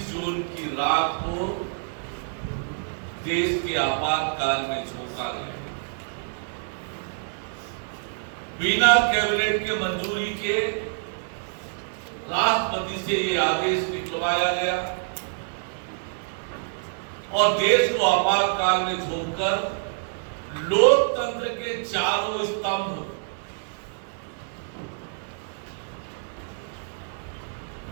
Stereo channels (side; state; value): left; silent; 61 dB below the other